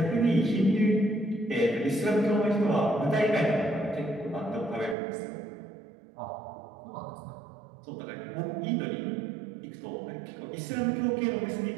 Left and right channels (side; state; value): left; drops out; at 5.0 s